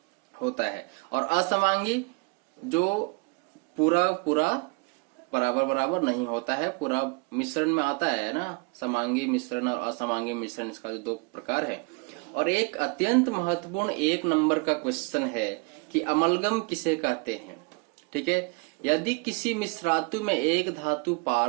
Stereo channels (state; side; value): quieter; left; 32.0 dB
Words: होता है, और असमांगी जो पूरा बराबर बराबर नहीं होता है, पूरा मिश्रण में आता है ना। समांगी मिश्रण और असमांगी मिश्रण, इसका जो 2 प्रकार है। और एक अत्यंत महत्वपूर्ण 1 नंबर का क्वेश्चन है कि अमलगम किसे कहते हैं, ठीक है। यदि किसी मिश्रातु में एक धातु